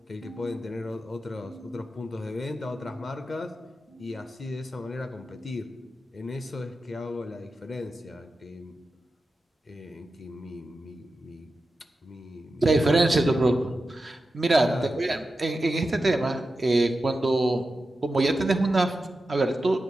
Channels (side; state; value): both; normal; correlation 0.91